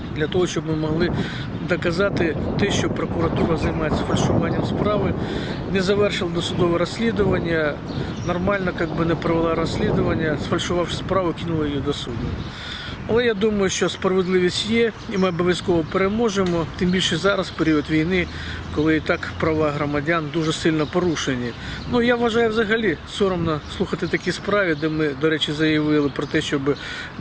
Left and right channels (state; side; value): identical; both; correlation 1.00